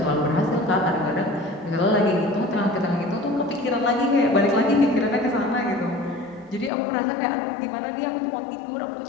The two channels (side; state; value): right; drops out; at 6.7 s